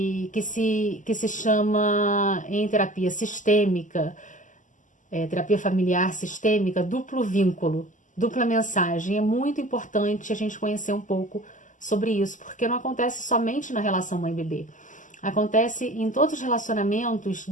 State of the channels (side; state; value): right; late; 0.37 ms